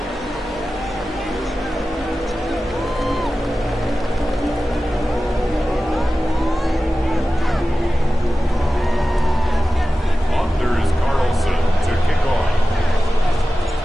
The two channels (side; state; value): both; normal; correlation 0.95